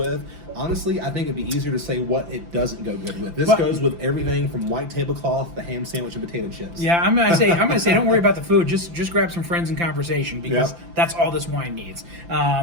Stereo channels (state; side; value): late; left; 5.9 ms